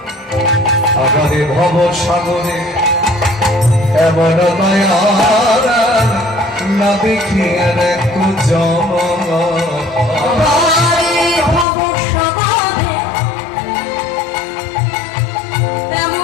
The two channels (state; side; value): drops out; right; at 11.7 s